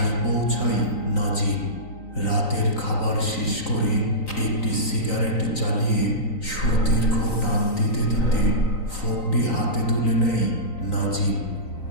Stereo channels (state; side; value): late; right; 3.9 ms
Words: পৌঁছায় নাজিম। রাতের খাবার শেষ করে একটি সিগারেট জ্বালিয়ে সুদীর্ঘ টান দিতে দিতে ফোনটি হাতে তুলে নেয় নাজিম।